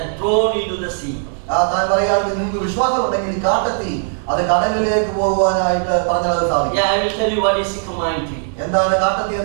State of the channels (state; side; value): silent; left; digital silence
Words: thrown into the sea. താൻ പറയുകയാണെങ്കിൽ നിങ്ങൾക്ക് വിശ്വാസം ഉണ്ടെങ്കിൽ ഈ കാട്ടത്തി അത് കടലിലേക്ക് പോകുവാനായിട്ട് പറഞ്ഞാൽ അത് സാധിക്കും. Yeah, I will tell you what is sycamore tree. എന്താണ് കാട്ടത്തി